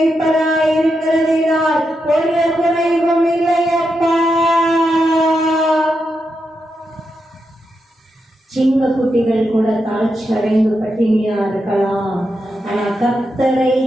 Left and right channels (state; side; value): normal; both; correlation 0.85